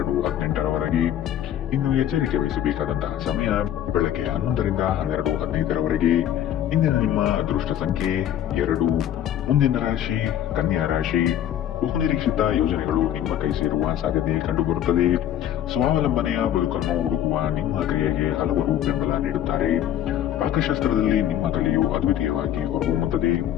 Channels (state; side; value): quieter; right; 11.0 dB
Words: ಇನ್ನು ಎಚ್ಚರಿಕೆ ವಹಿಸಬೇಕಾದಂತಹ ಸಮಯ ಬೆಳಗ್ಗೆ 11 ರಿಂದ 12:15 ಇಂದಿನ ನಿಮ್ಮ ಅದೃಷ್ಟ ಸಂಖ್ಯೆ 2. ಮುಂದಿನ ರಾಶಿ ಕನ್ಯಾ ರಾಶಿ. ಬಹುನಿರೀಕ್ಷಿತ ಯೋಜನೆಗಳು ನಿಮ್ಮ ಕೈ ಸೇರುವ ಸಾಧ್ಯತೆ ಕಂಡುಬರುತ್ತದೆ. ಸ್ವಾವಲಂಬನೆಯ ಬದುಕನ್ನು ಹುಡುಕುವ ನಿಮ್ಮ ಕ್ರಿಯೆಗೆ ಹಲವರು ಬೆಂಬಲ ನೀಡುತ್ತಾರೆ. ಪಾಕಶಾಸ್ತ್ರದಲ್ಲಿ ನಿಮ್ಮ ಕಲೆಯು ಅದ್ವಿತೀಯವಾಗಿ ಹೊರಹೊಮ್ಮುತ್ತದೆ.